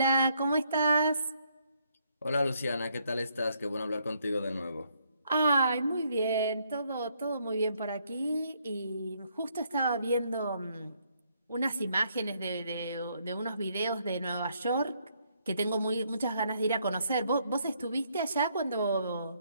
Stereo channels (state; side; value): inverted; both; correlation -0.71